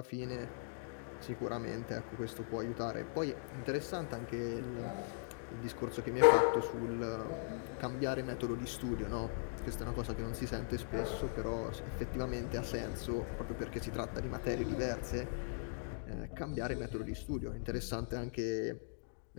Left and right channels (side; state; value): right; silent; digital silence